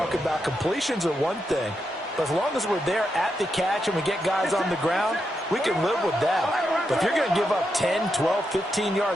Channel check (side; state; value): both; normal; correlation 0.84